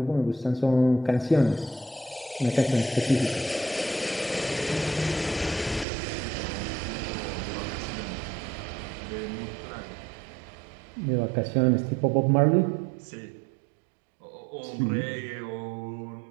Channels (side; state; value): left; drops out; at 5.9 s